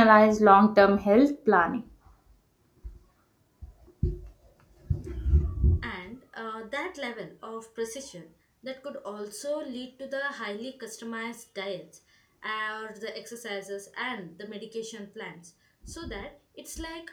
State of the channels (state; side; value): identical; both; correlation 1.00